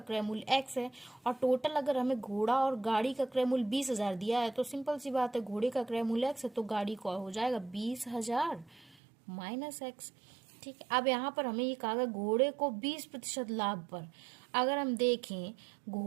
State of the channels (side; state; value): left; drops out; at 9.0 s